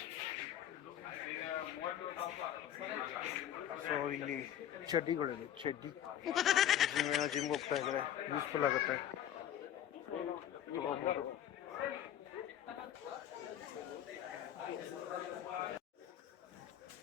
ಸೊ ಇಲ್ಲಿ ಚಡ್ಡಿಗಳಿದೆ, ಚಡ್ಡಿ ಜಿಮ್ಗೆ ಹೋಗ್ತಾ ಇದ್ದಾರೆ, ಯೂಸ್ಫುಲ್ ಆಗುತ್ತೆ, ತಗೋಬೋದು.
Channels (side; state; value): right; quieter; 10.8 dB